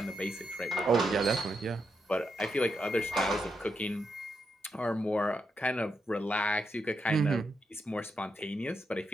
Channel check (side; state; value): both; normal; correlation 0.83